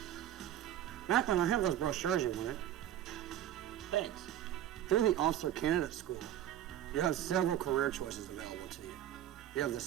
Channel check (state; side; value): quieter; left; 11.7 dB